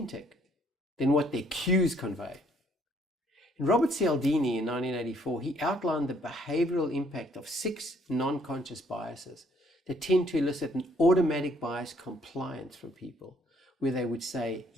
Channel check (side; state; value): both; normal; correlation 0.65